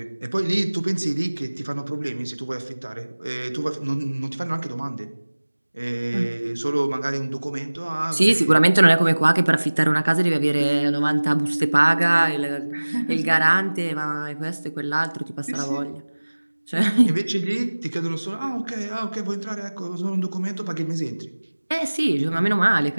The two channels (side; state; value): both; inverted; correlation -1.00